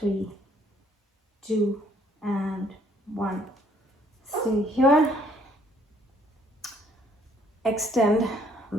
2, and 1. Stay here. Extend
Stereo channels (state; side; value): normal; both; correlation 0.63